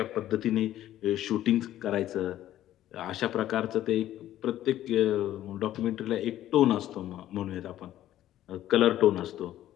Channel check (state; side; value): quieter; right; 13.0 dB